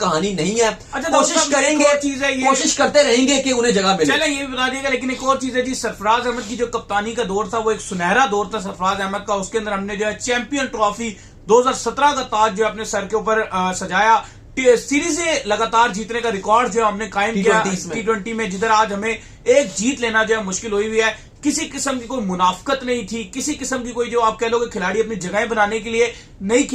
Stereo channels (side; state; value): both; identical; correlation 1.00